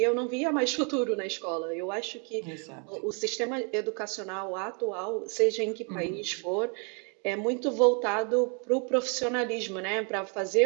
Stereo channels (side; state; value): left; quieter; 37.0 dB